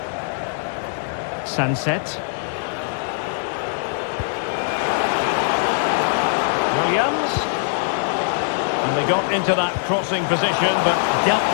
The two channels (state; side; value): silent; right; 64 dB below the other